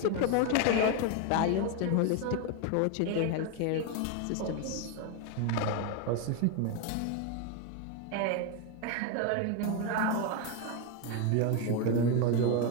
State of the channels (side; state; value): both; different; correlation 0.02